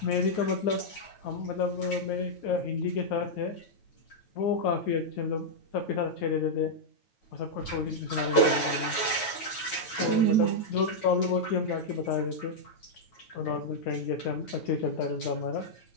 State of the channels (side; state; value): right; late; 9.2 ms